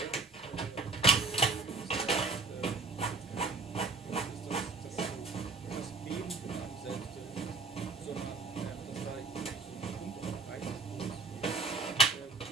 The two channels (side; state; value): left; quieter; 4.0 dB